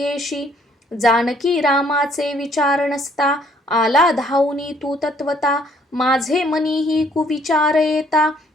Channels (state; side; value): normal; both; correlation 0.63